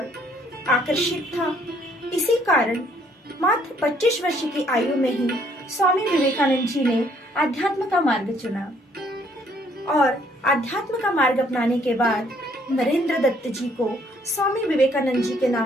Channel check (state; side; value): normal; both; correlation 0.65